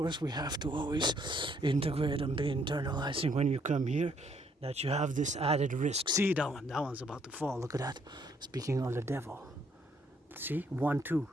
we have to always integrate and be internalizing when you come here, that you have this added risk. See that one? That one's about to fall. Look at that. Speaking of the devil. See? 1, 2.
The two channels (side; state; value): both; normal; correlation 0.68